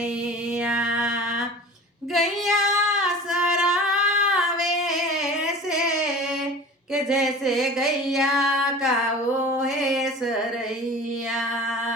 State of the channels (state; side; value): normal; both; correlation 0.38